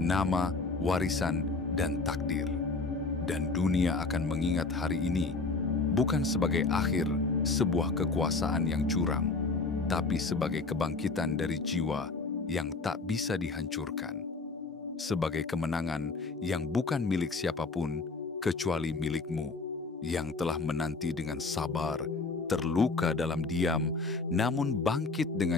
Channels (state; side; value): quieter; right; 3.8 dB